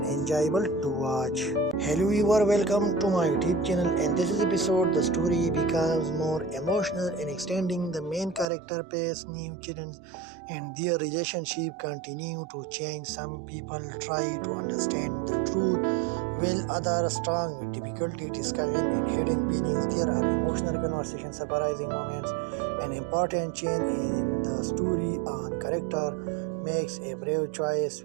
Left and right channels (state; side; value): drops out; left; at 8.5 s